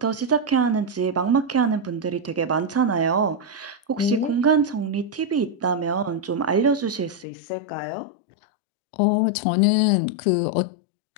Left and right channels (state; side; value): drops out; right; at 7.2 s